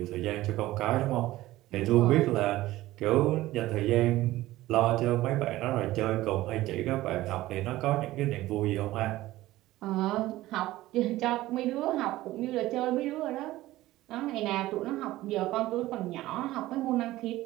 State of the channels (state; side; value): quieter; left; 16.6 dB